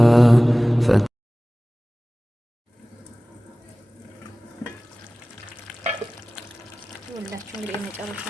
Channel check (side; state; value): both; normal; correlation 0.98